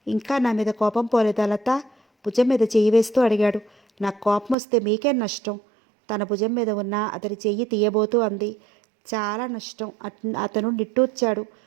ఇంకా నా మీద కోపం పోలేదా లత? భుజం మీద చెయ్యి వేస్తూ అడిగాడు. నాకు కోపం వస్తే మీకేం నష్టం? తన భుజం మీద ఉన్న అతని చెయ్యి తీయబోతూ అంది. చాలా నష్టం. అతను నిట్టూర్చాడు.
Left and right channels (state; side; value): drops out; left; at 4.5 s